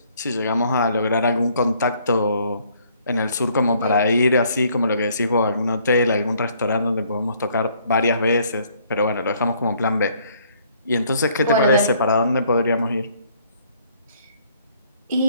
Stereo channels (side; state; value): both; inverted; correlation -0.63